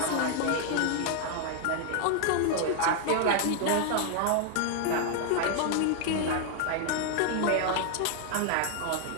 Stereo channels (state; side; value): different; both; correlation 0.00